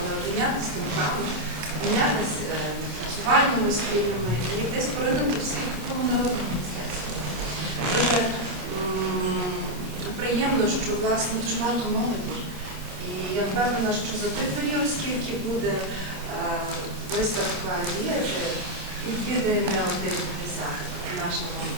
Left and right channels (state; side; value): late; left; 28 ms